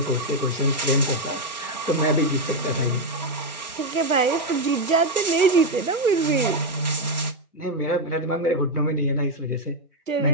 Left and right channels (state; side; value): normal; both; correlation 0.03